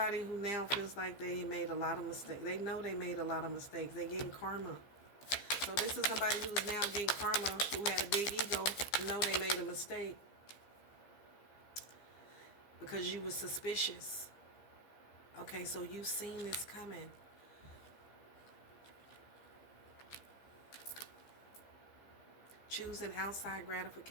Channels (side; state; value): right; late; 15 ms